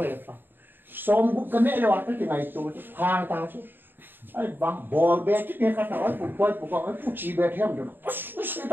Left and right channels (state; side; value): late; left; 0.095 ms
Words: xong cũng cái này là cái ngày tôi hàng ta chứ ai bằng ball bé cái này cái nào ấy phụ coi phụ chỉ bé theo được cái